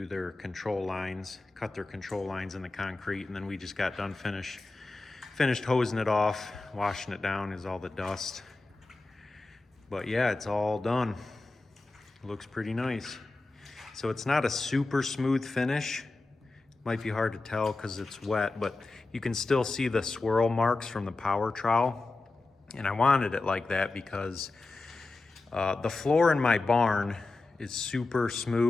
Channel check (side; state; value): right; quieter; 3.3 dB